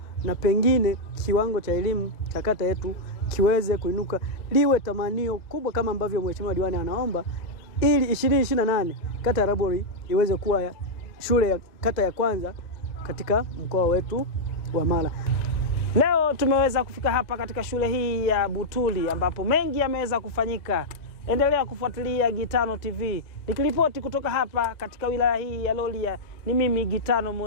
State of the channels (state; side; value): late; right; 1.9 ms